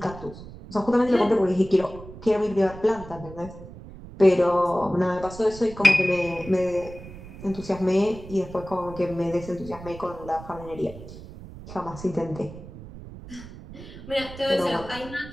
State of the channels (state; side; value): noise; right; rumble, 15 dB below the sound